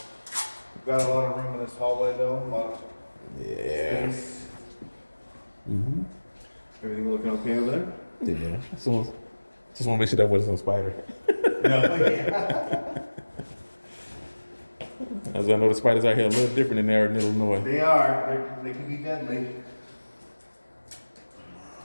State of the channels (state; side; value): inverted; both; correlation -1.00